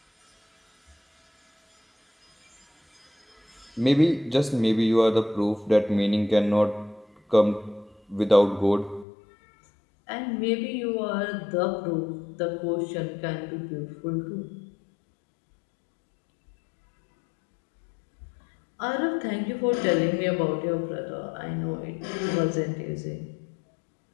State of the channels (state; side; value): drops out; right; at 9.1 s